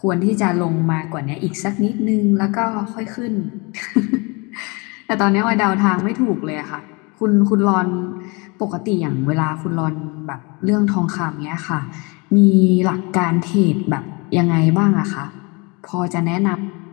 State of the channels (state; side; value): quieter; right; 28.8 dB